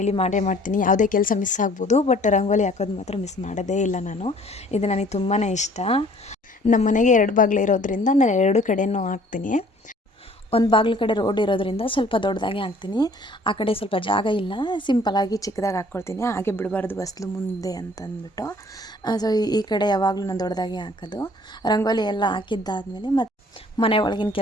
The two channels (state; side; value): normal; both; correlation 0.55